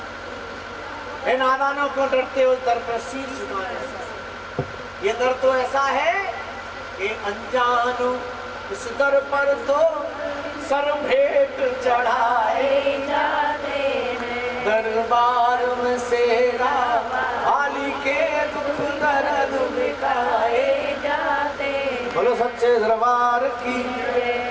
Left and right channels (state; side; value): identical; both; correlation 1.00